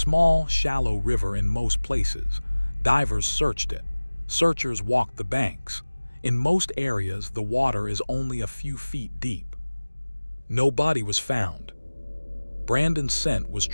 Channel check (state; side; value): inverted; both; correlation -1.00